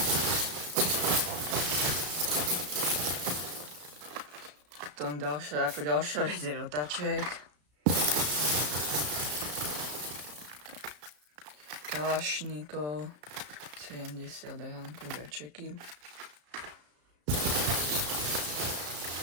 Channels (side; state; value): left; late; 33 ms